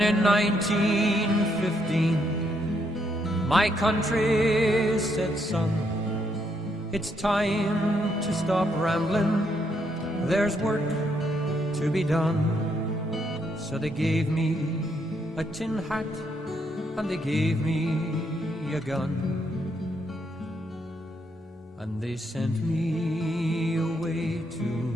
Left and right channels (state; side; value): normal; both; correlation 0.75